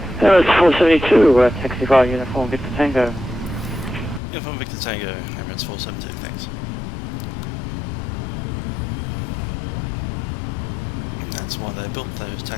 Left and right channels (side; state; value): right; drops out; at 4.2 s